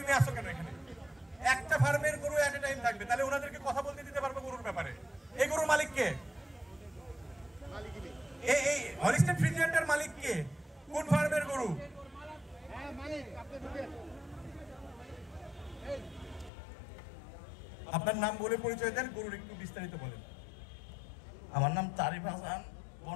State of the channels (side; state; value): right; drops out; at 16.5 s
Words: তুমি আসো কেন এখানে? একটা ফার্মের গরু এট এ টাইম থাকবে, তাহলে ওনাদেরকে কথা বলতে দিতে পারবো গরুর ব্যাপারে। এই গরুর মালিক কে? এই হলিস্টাইন ফ্রিজিয়ানটার মালিক কে? কোন ফার্মের গরু? আপনার নাম বলে পরিচয় দেন, গরুর একটু বিস্তারিত বলেন। আমার নাম তারিফ হাসান,